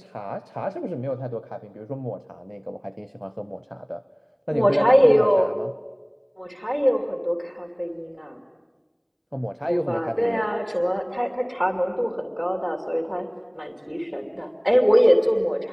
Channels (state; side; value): identical; both; correlation 1.00